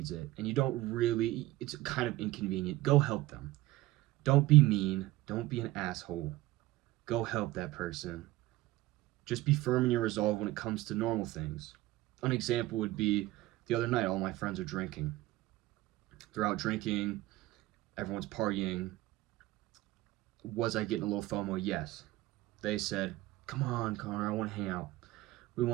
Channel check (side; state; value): left; quieter; 17.4 dB